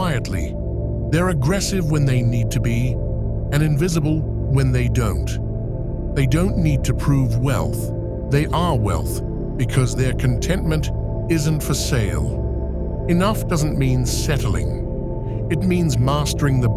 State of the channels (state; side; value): identical; both; correlation 1.00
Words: They're aggressive when they need to be, and invisible when they don't. They don't need to prove wealth. They are wealth because their contentment isn't for sale. Enough doesn't mean settling. It means mastering the